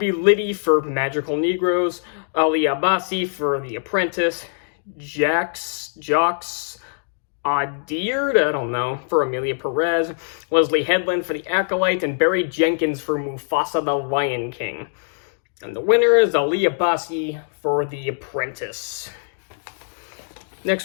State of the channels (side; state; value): right; silent; digital silence